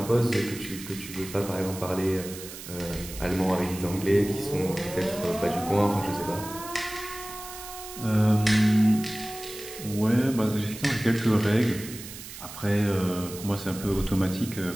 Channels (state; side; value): noise; right; hiss, 13 dB below the sound